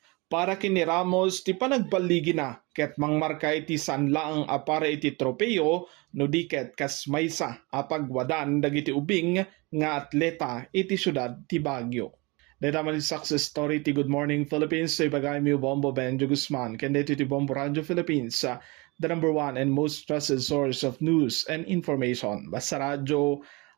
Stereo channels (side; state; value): left; quieter; 26.5 dB